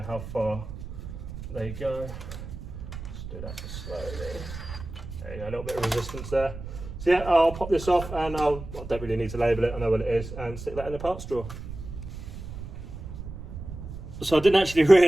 how far they go. Just do that slowly. There you go, a little bit of resistance there. So yeah, I'll pop this off and I don't really need to label it, I know what it is, and stick that in the parts drawer. So I didn't actually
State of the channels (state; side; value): noise; right; rumble, 10 dB below the sound